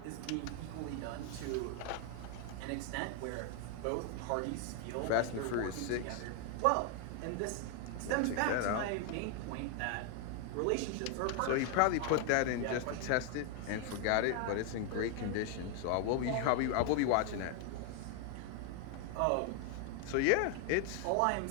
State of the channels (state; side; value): different; both; correlation 0.00